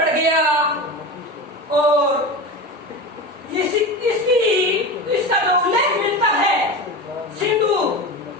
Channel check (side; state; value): both; normal; correlation 0.26